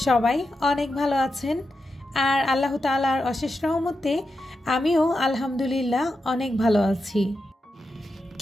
সবাই অনেক ভালো আছেন, আর আল্লাহ তাআলার অশেষ রহমতে আমিও আলহামদুলিল্লাহ অনেক ভালো আছি।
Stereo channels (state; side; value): normal; both; correlation 0.88